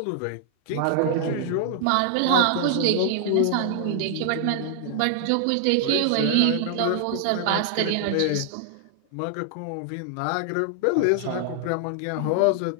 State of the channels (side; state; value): both; different; correlation 0.00